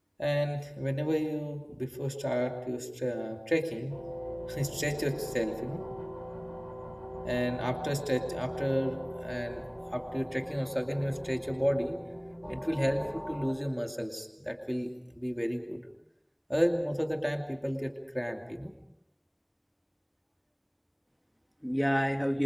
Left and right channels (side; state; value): both; identical; correlation 1.00